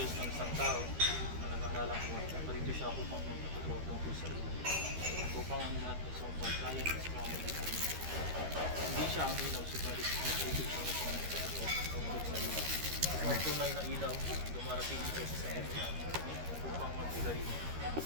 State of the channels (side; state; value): left; late; 13 ms